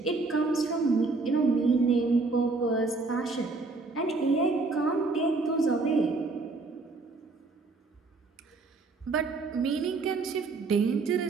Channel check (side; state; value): left; quieter; 3.7 dB